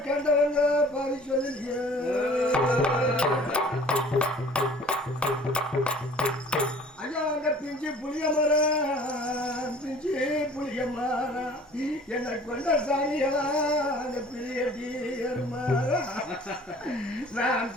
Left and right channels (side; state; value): both; normal; correlation 0.49